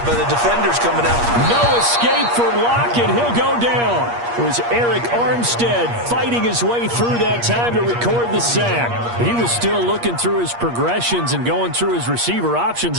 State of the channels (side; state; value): left; late; 8.5 ms